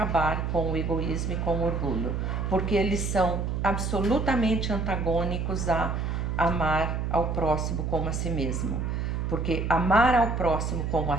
com o egoísmo e com o orgulho, porque eles são absolutamente antagônicos a amar ao próximo como a si mesmo. Porque amar ao próximo como a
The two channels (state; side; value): noise; right; hum, 1 dB below the sound